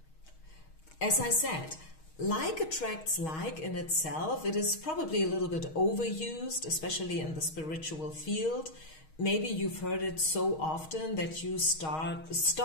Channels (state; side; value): late; right; 6.4 ms